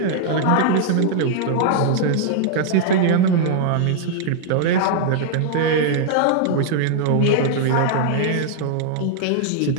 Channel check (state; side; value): different; both; correlation -0.01